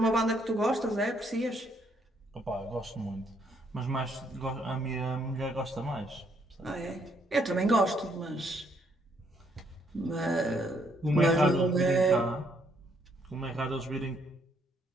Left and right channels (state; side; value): normal; both; correlation 0.70